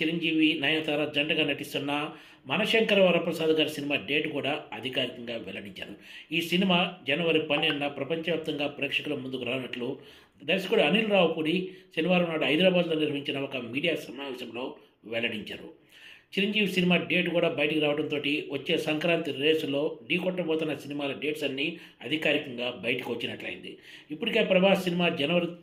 నయనతార జంటగా నటిస్తున్న 'మనశంకర వరప్రసాద్' గారి సినిమా డేట్ కూడా అధికారికంగా వెల్లడించారు. ఈ సినిమా జనవరి 12న ప్రపంచవ్యాప్తంగా ప్రేక్షకుల ముందుకు రానున్నట్లు దర్శకుడు అనిల్ రావుపూడి శనివారం నాడు హైదరాబాద్లో నిర్వహించిన ఒక మీడియా సమావేశంలో వెల్లడించారు. చిరంజీవి సినిమా డేట్ కూడా బయటికి రావడంతో వచ్చే సంక్రాంతి రేసులో ఢీకొట్టబోతున్న సినిమాల డేట్స్ అన్నీ అధికారికంగా బయటకు వచ్చినట్లయింది. ఇప్పటికే ప్రభాస్ సినిమా జనవరి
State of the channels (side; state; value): both; identical; correlation 1.00